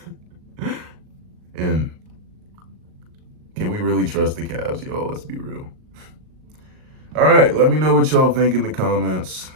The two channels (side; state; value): left; late; 38 ms